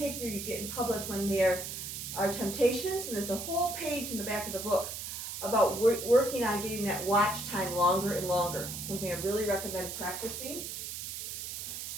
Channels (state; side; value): noise; right; hiss, 6 dB below the sound